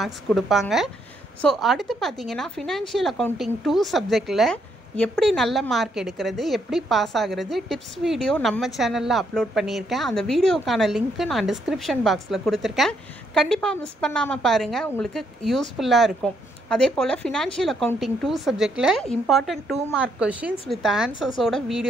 கொடுப்பாங்க. ஸோ அடுத்து பார்த்தீங்கன்னா ஃபினான்ஷியல் அக்கௌண்டிங் 2 சப்ஜெக்டில் எப்படி நல்ல மார்க் எடுக்கிறது, எப்படி பாஸ் ஆகிறது, டிப்ஸ் வீடியோ நம்ம சேனலில் அப்லோட் பண்ணியிருக்கேன். அந்த வீடியோக்கான லிங்க்கு நான் டிஸ்கிரிப்ஷன் பாக்ஸில் கொடுத்துருக்கேன். கண்டிப்பாக மிஸ் பண்ணாமல் பாருங்கள், உங்களுக்கு யூஸ்ஃபுல்லாக இருக்கும். அதே போல் ஃபினான்ஷியல் அக்கௌண்டிங் 2 சப்ஜெக்டில் இம்பார்ட்டன்ட் 2 மார்க் கொஷின்ஸ் வித் ஆன்சர்ஸோட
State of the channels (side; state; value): both; normal; correlation 0.74